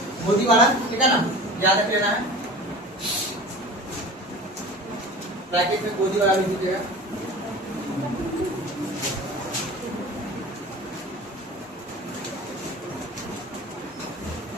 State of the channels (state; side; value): normal; both; correlation 0.37